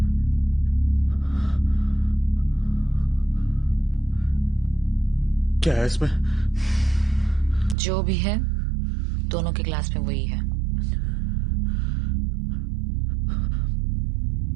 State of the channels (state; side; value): drops out; left; at 7.8 s